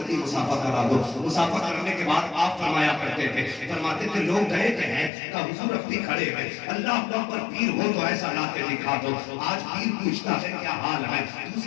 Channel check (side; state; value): right; drops out; at 5.1 s